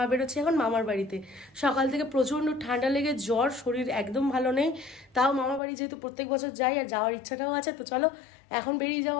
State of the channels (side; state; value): right; drops out; at 5.6 s